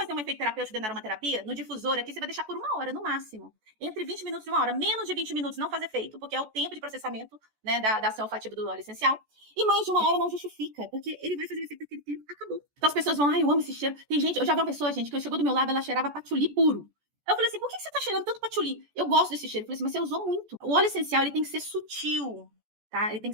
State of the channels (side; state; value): left; late; 14 ms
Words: um efeito terapêutico dentro da aromaterapia, no difusor aqui, você vai deixar por 1 hora, no máximo. Entre 20 minutos e 1 hora. Menos de 20 minutos não faz efeito, porque é o tempo de processamento, né, da ação olfativa do óleo essencial. E mais de 1 hora não justifica, porque ele vai fazer o efeito daquele tempo, acabou. Então as pessoas vão, ai, eu amo esse cheiro. Tem gente, eu já vi uma pessoa, gente, que chegou do meu lado, ela cheirava patchouli puro. Eu falei assim, por que você tá cheirando tanto patchouli? Eu gosto desse cheiro. Eu falei assim, mas você usou muito. O óleo essencial, ele tem que ser sutil, tá? Ele tem